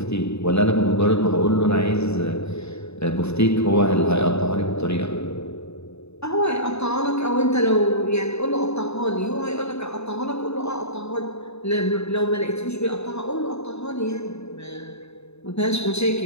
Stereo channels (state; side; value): late; right; 0.80 ms